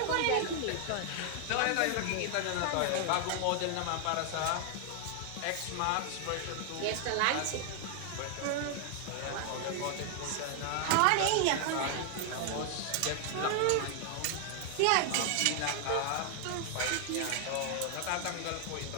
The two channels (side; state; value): both; different; correlation 0.00